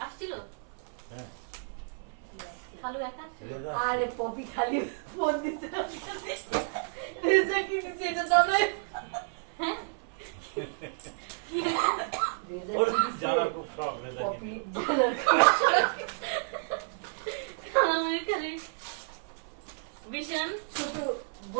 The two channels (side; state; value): left; silent; 57 dB below the other